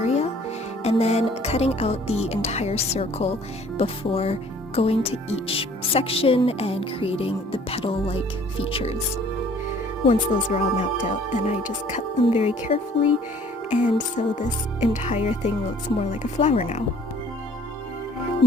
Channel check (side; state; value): both; normal; correlation 0.55